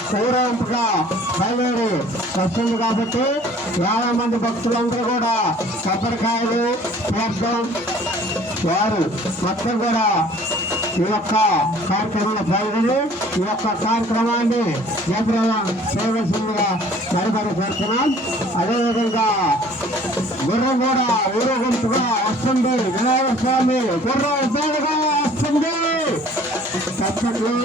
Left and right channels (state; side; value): normal; both; correlation 0.52